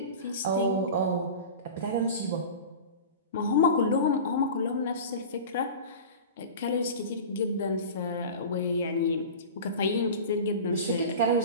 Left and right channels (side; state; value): both; inverted; correlation -0.33